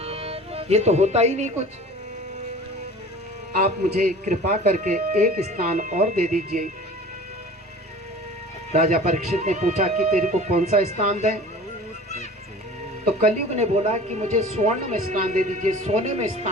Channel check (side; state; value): both; normal; correlation 0.42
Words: ये तो होता ही नहीं कुछ, आप मुझे कृपा करके एक स्थान और दे दीजिए। राजा परीक्षित ने पूछा कि तेरे को कौन सा स्थान दें? तो कलयुग ने बोला कि मुझे स्वर्ण में स्थान दे दीजिए, सोने में